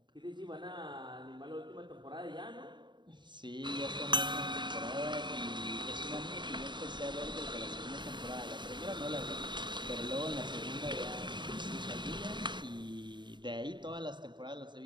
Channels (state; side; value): late; left; 0.22 ms